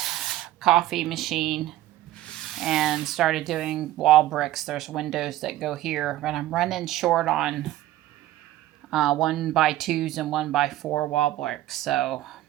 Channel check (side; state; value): left; quieter; 14.7 dB